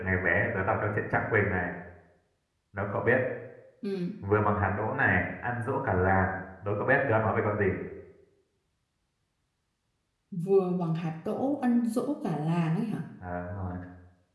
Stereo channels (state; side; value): identical; both; correlation 1.00